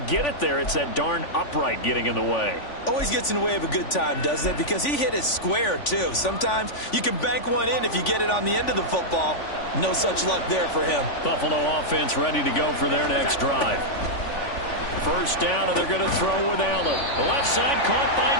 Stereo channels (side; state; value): right; late; 3.5 ms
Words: it there. It's that darn upright getting in the way. Always gets in the way of a good time, doesn't it? Because he hit it square, too. Sometimes you can bank one in if you get it on the end of the football. No such luck there for him. Buffalo offense ready to go for their next drive. 1st down, and they're going to throw with Allen. The left side caught by